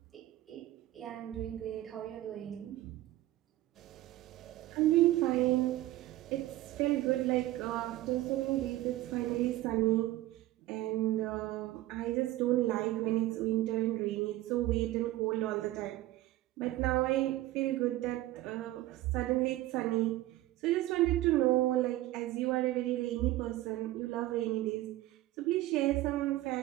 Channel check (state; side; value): quieter; left; 16.2 dB